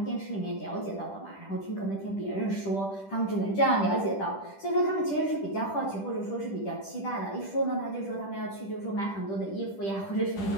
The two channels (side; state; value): right; late; 10 ms